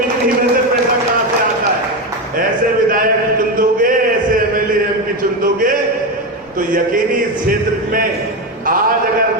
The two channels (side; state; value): both; normal; correlation 0.14